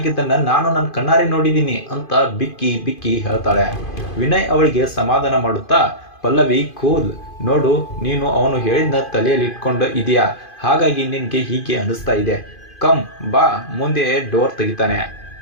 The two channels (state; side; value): late; right; 2.5 ms